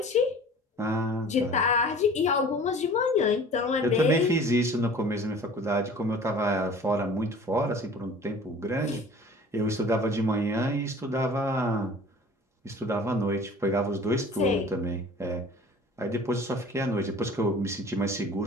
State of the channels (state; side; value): normal; both; correlation 0.45